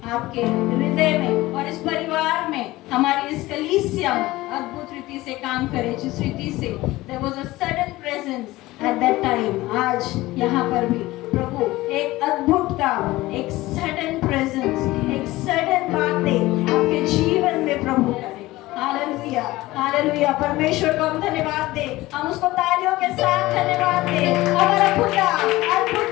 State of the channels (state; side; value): quieter; right; 18.4 dB